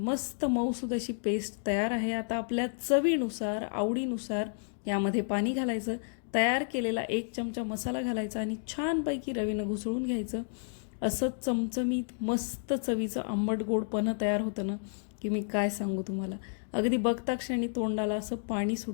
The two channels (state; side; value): silent; right; digital silence